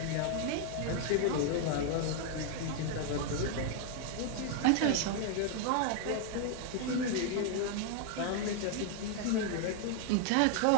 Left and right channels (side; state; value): both; different; correlation 0.00